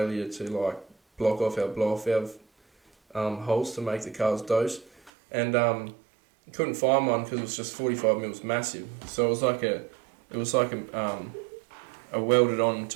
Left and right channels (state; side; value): drops out; left; at 5.1 s